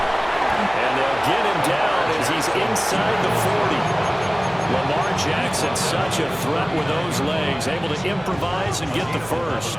And they'll get him down as he's inside the 40. Lamar Jackson, such a threat with those legs, able to improvise and get the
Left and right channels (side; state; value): right; noise; hum, 18 dB below the sound